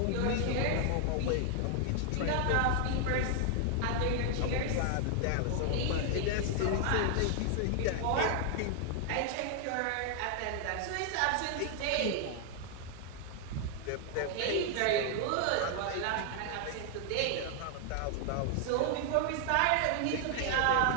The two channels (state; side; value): different; both; correlation 0.00